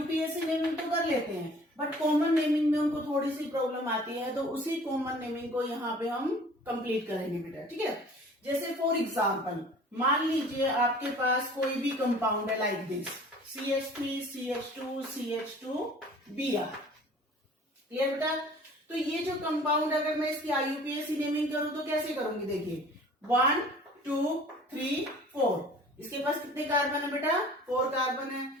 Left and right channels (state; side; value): normal; both; correlation 0.48